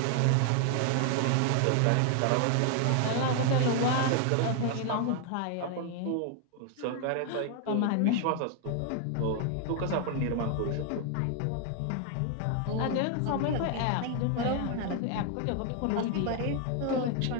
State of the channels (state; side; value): different; both; correlation 0.00